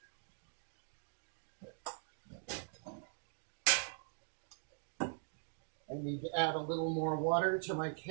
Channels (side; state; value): left; silent; digital silence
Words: I need to add a little more water to my